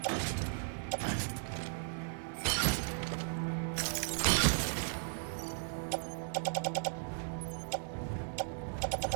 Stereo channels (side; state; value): left; silent; 53 dB below the other